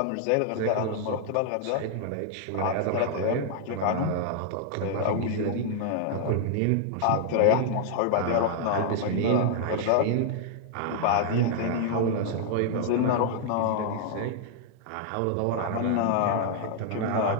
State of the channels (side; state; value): both; different; correlation -0.01